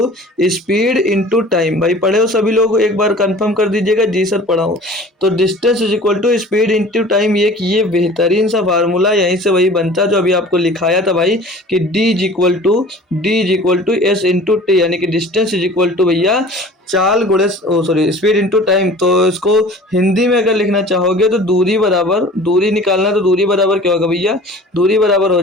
speed into time. भाई पढ़े हो सभी लोग, एक बार कंफर्म कर दीजिएगा, जी सर पढ़ा हूँ। तो distance is equal to speed into time, ये बेहतरीन सा फार्मूला यहीं से वही बनता है जो अभी आपको लिखाया था भाई, कि D is equal to S into T, यानी कि डिस्टेंस इज इक्वल टू भैया चाल गुणे स्पीड इंटू टाइम। तो इसको हिंदी में अगर लिखना चाहोगे तो दूरी बराबर, दूरी निकालना तो दूरी बराबर क्या होगा भैया, दूरी बराबर हो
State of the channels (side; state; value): both; normal; correlation 0.44